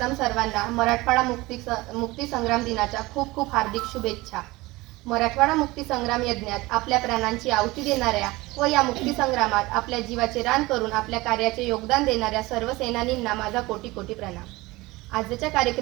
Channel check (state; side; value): quieter; left; 21.0 dB